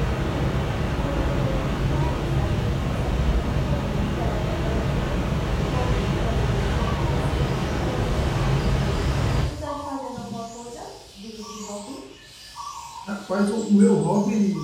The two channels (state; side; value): identical; both; correlation 1.00